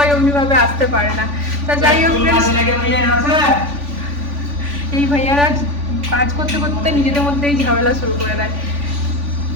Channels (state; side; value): late; left; 3.5 ms